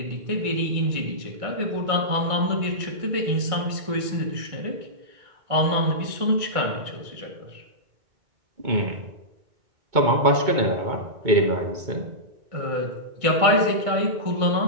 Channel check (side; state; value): left; late; 2.2 ms